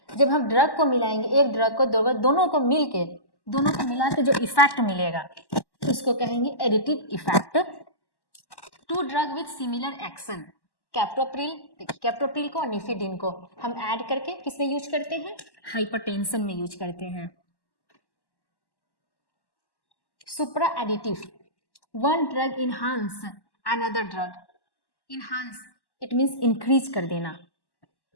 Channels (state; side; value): late; right; 1.1 ms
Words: जब हम ड्रग को मिलाएंगे, एक ड्रग को दोनों को मिला के जो इफेक्ट मिलेगा उसको कहेंगे additive effect. Two drug with similar action, captopril, देखिए कैप्टोप्रिल को और निफिडिन को हम ऐड करके किसमें यूज करते हैं? हाइपरटेंशन में यूज करते हैं। Supra additive, one drug enhance another drug. Enhance it means increase कर देना।